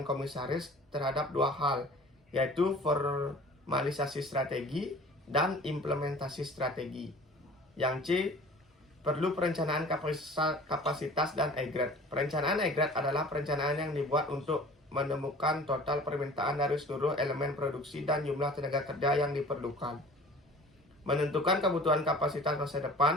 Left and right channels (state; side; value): normal; both; correlation 0.45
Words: komisaris terhadap dua hal, yaitu formalisasi strategi dan implementasi strategi. Yang C, perlu perencanaan kapasitas dan aggregate. Perencanaan aggregate adalah perencanaan yang dibuat untuk menemukan total permintaan dari seluruh elemen produksi dan jumlah tenaga kerja yang diperlukan. Menentukan kebutuhan kapasitas masa